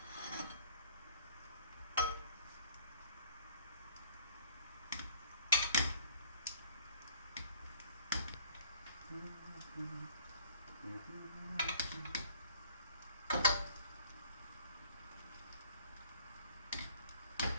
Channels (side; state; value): both; inverted; correlation -0.56